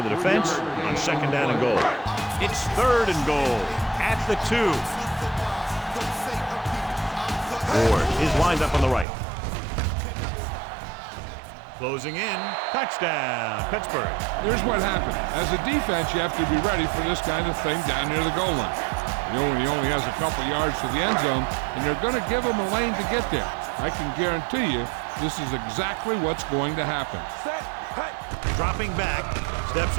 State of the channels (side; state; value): left; drops out; at 9.1 s